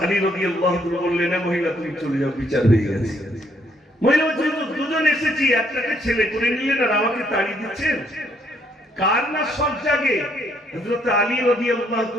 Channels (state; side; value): normal; both; correlation 0.70